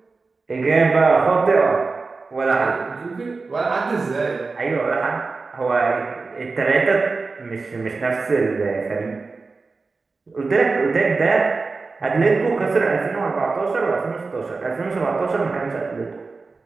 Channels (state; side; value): quieter; left; 4.1 dB